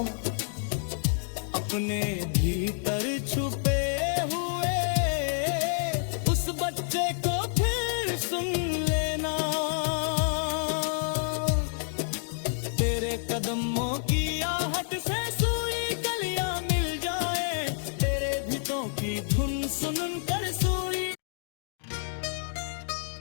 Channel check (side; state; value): right; silent; digital silence